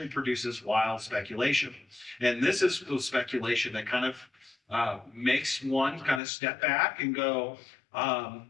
produces wild speculation. And this is the speculation that kind of makes one kind of step back and go,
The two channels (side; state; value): right; drops out; at 6.2 s